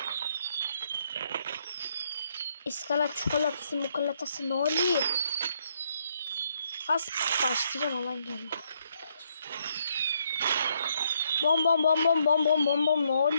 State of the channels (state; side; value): inverted; both; correlation -0.73